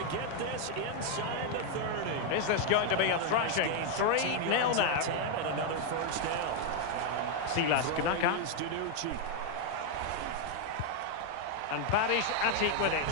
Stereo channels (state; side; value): different; both; correlation 0.00